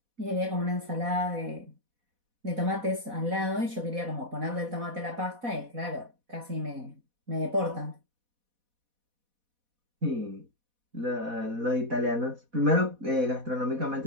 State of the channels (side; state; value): left; late; 4.1 ms